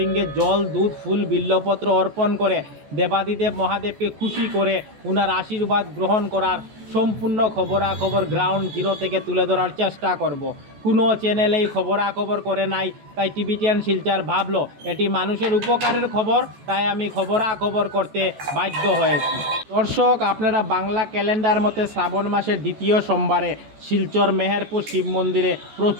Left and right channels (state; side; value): late; left; 14 ms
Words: জল, দুধ, ফুল, বিল্লপত্র অর্পণ করে দেবাদিদেব মহাদেবকে খুশি করে ওনার আশীর্বাদ গ্রহণ করার সম্পূর্ণ খবরাখবর গ্রাউন্ড জিরো থেকে তুলে ধরার চেষ্টা করব। কোনো চ্যানেলেই খবরাখবর করে নাই, তাই টিভি10 শিলচর ভাবলো এটি মানুষের উপকারের খবর, তাই আমি খবরাখবর করতে বাধ্য হয়েছি। দর্শক, আপনারা বাংলা ক্যালেন্ডার মতে শ্রাবণ মাসের দ্বিতীয় সোমবারে শিলচর মেহেরপুর শিব মন্দিরে